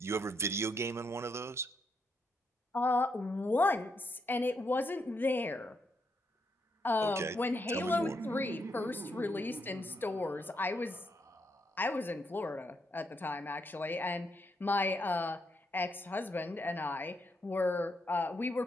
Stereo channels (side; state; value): both; normal; correlation 0.79